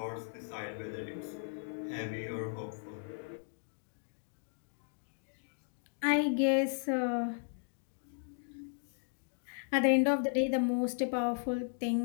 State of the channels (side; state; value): right; silent; digital silence